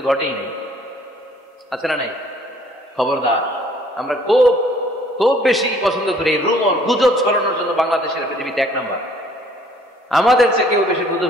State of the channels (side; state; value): both; normal; correlation 0.58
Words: ঘটেই নেই, আছে না নাই? খবরদার, আমরা খুব খুব বেশি পছন্দ করি রুমর, গুজব ছড়ানোর জন্য বাংলাদেশের পৃথিবীতে 1 নাম্বার। আমাদের চেয়ে কেউ বেশি গুজব